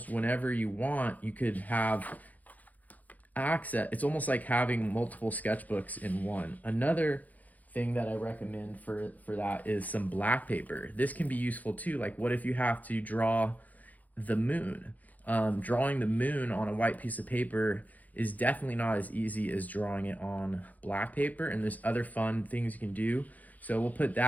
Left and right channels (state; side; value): late; right; 0.079 ms